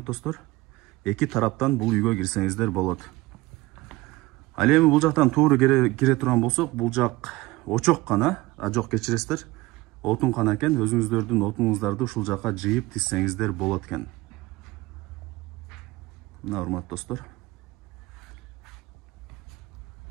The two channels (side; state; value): left; quieter; 20.0 dB